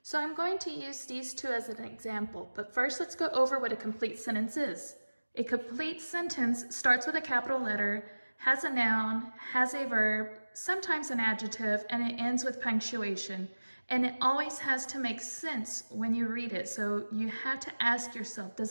So I'm going to use these two as an example, but first let's go over what a complete sentence is. A complete sentence starts with a capital letter, has a noun, has a verb, sometimes an adjective, and it ends with punctuation. And it always has to make sense when you read it. So you have to ask yourself,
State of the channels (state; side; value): inverted; both; correlation -1.00